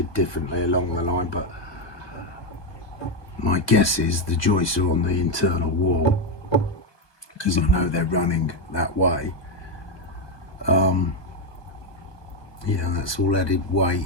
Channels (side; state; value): right; late; 1.2 ms